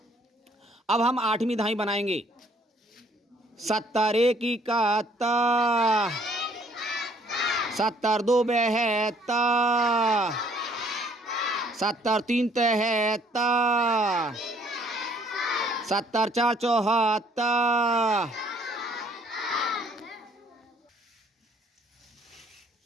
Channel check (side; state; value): both; normal; correlation 0.62